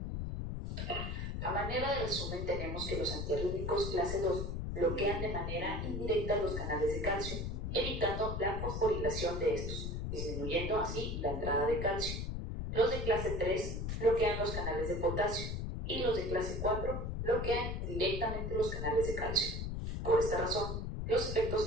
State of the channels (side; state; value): left; noise; rumble, 3 dB below the sound